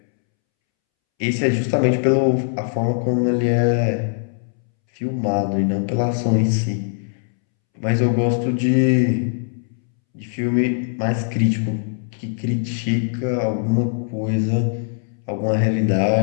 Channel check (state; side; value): silent; right; 65 dB below the other